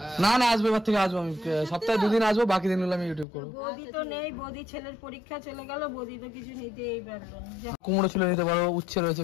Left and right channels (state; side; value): drops out; right; at 3.2 s